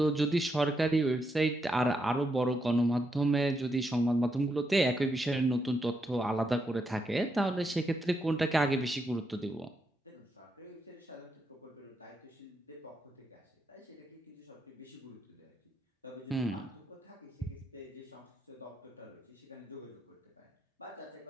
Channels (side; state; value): both; normal; correlation 0.81